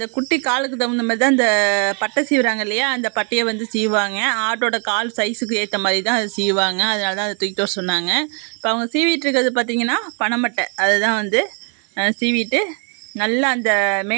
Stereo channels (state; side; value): quieter; left; 38.8 dB